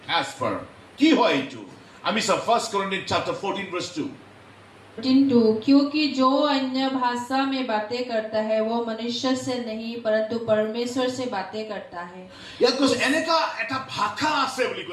As per কি হয় এইটো, আমি চাওঁ 1 Corinthians chapter 14 verse 2. क्योंकि जो अन्य भाषा में बातें करता है वो मनुष्य से नहीं परंतु परमेश्वर से बातें करता है। ইয়াত কৈছে এনেকা এটা ভাষা আছে বুলি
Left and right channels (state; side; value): identical; both; correlation 1.00